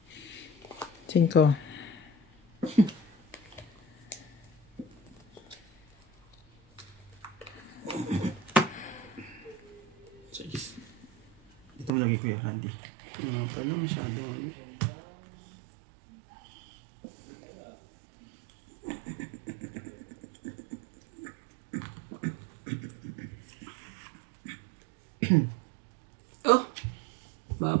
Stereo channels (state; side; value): drops out; left; at 11.9 s